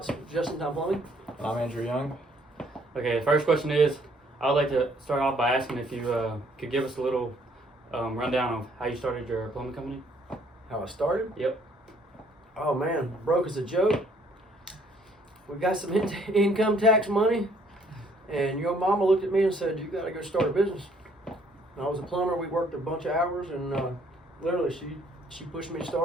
Justin Time Plumbing. And I'm Andrew Young. Okay, first question is, I would like to start off by asking if you could give us a little rundown of how you started your plumbing company. How I started? Yep. Oh man, broke as a joke. We got some income tax money, and your mama looked at me and said, "You got to go start a business." And I was a plumber. We worked a bunch of hours, and literally she pushed me to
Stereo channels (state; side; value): normal; both; correlation 0.63